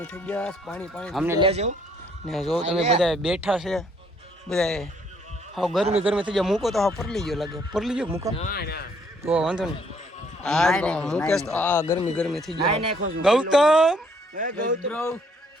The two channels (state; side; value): normal; both; correlation 0.66